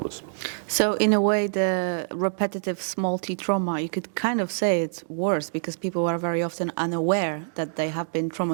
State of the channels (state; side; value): silent; left; digital silence